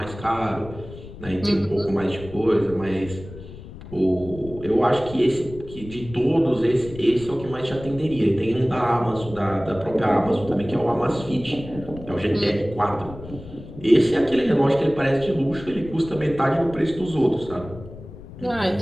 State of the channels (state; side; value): noise; left; rumble, 15 dB below the sound